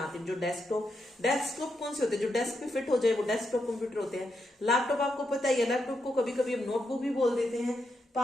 हैं। जो डेस्कटॉप कौन से होते हैं? जो डेस्क पे फिट हो जाए वो डेस्कटॉप कंप्यूटर होते हैं। लैपटॉप आपको पता ही है, लैपटॉप को कभी कभी हम नोटबुक भी बोल देते हैं।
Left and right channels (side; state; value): both; normal; correlation 0.83